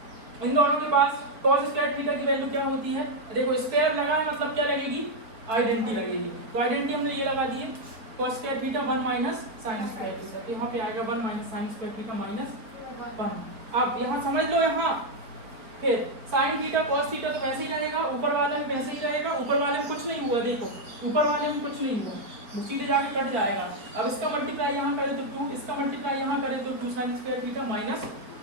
इन दोनों के पास cos स्क्वायर थीटा की वैल्यू क्या होती है? देखो स्क्वायर लगा है मतलब क्या लगेगी? आइडेंटिटी लगेगी, तो आइडेंटिटी हमने ये लगा दी है cos square theta 1 minus sign square theta, तो यहाँ पे आएगा 1 minus sign square theta minus 1। अब यहाँ समझ लो, यहाँ फिर साइन थीटा cos थीटा तो वैसे ही रहेगा, ऊपर वाले में वैसे ही रहेगा, ऊपर वाले में कुछ नहीं हुआ, देखो ऊपर वाले में कुछ नहीं हुआ, वो सीधे जाके कट जाएगा। अब इसका मल्टीप्लाई यहाँ करें तो 2, इसका मल्टीप्लाई यहाँ करें तो 2 साइन स्क्वायर थीटा माइनस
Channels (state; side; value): late; left; 4.3 ms